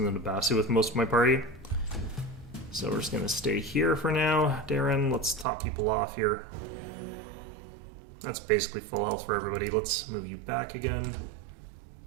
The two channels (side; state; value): left; drops out; at 5.5 s